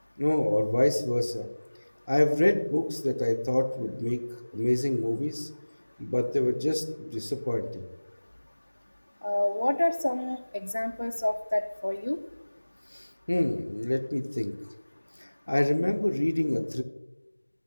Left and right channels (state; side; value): inverted; both; correlation -1.00